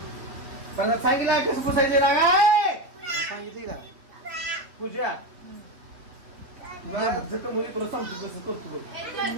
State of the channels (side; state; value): left; late; 3.2 ms